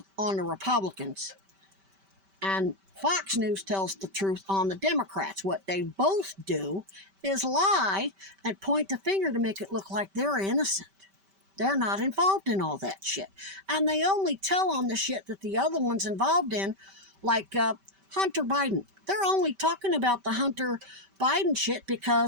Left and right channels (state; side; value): late; left; 5.1 ms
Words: on the Republicans, and Fox News tells the truth on the Democrats. What they both do is lie and point the finger to make it look like they're innocent. They're not involved in all that shit. And they only tell on the shit that the other one's involved in, like Hunter Biden. They're only talking about the Hunter Biden shit